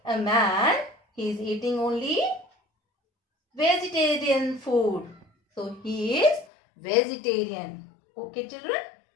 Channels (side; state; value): right; drops out; at 6.5 s